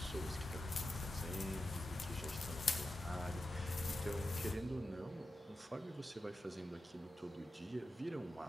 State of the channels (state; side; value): normal; both; correlation 0.91